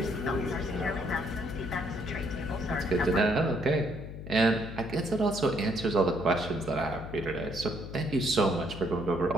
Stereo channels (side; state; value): left; noise; hum, 10 dB below the sound